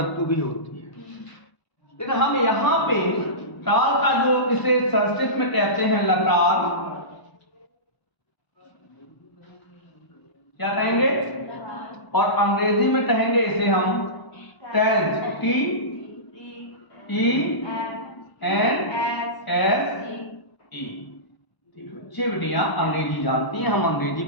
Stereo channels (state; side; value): late; right; 1.0 ms